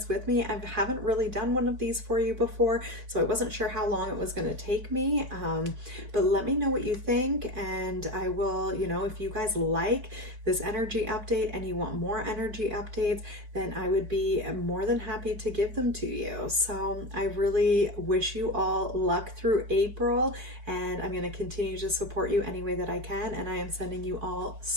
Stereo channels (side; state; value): left; late; 4.6 ms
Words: with me. I haven't really done one of these for you before, so I wasn't sure how long it was going to take me. But let me know what you think, and I will, if you guys like this energy update and you want more energy updates, then I would be more than happy to give them to you. So I really wish you all luck through April, and I'm going to continue to support you any way that I can. And I am sending you all